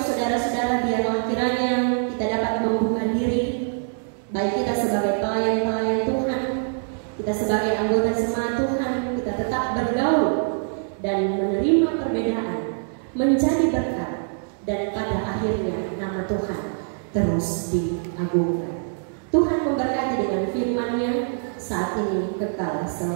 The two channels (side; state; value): left; silent; digital silence